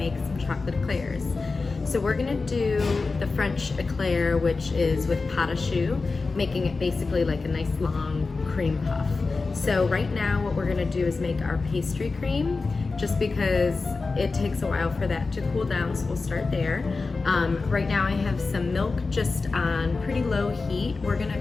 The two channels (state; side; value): quieter; right; 4.0 dB